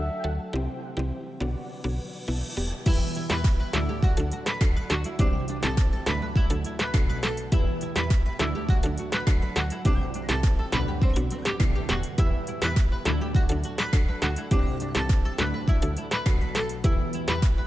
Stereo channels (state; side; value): normal; both; correlation 0.93